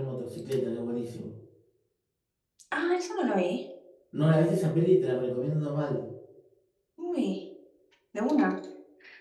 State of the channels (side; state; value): both; identical; correlation 1.00